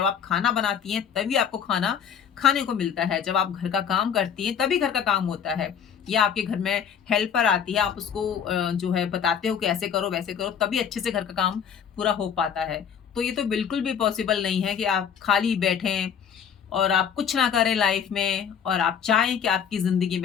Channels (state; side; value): quieter; right; 7.8 dB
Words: आप खाना बनाती हैं, तभी आपको खाना खाने को मिलता है। जब आप घर का काम करती हैं, तभी घर का काम होता है। या आपके घर में हेल्पर आती है, आप उसको जो है बताते हो कि ऐसे करो, वैसे करो, तभी अच्छे से घर का काम पूरा हो पाता है। तो ये तो बिल्कुल भी पॉसिबल नहीं है कि आप खाली बैठें और आप कुछ ना करें लाइफ में, और आप चाहें कि आपकी ज़िंदगी